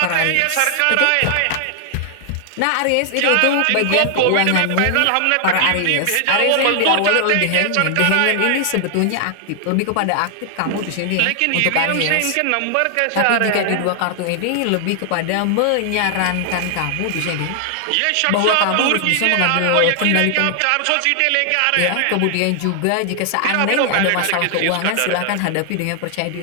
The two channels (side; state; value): both; different; correlation 0.00